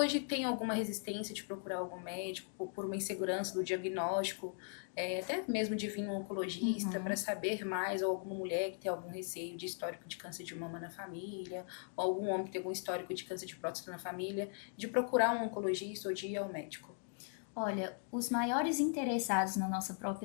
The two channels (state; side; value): silent; right; 52 dB below the other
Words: tem alguma resistência de procurar algum médico por uma insegurança do diagnóstico, até mesmo de vir um oncologista para saber mais, ou alguma mulher que tem algum receio de histórico de câncer de mama na família, ou algum homem que tem algum histórico de câncer de próstata na família, de procurar um oncologista ou de ir ao médico? Olha, os maiores interessados na nossa